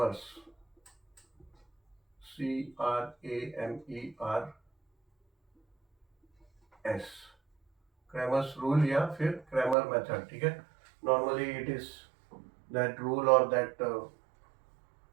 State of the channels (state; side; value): drops out; left; at 9.8 s